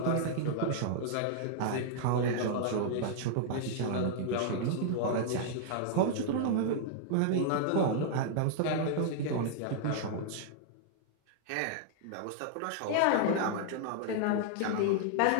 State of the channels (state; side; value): different; both; correlation -0.01